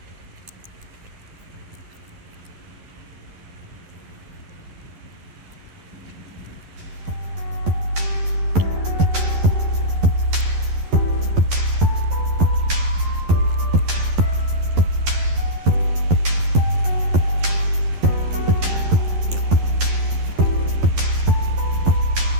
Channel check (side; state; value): left; late; 11 ms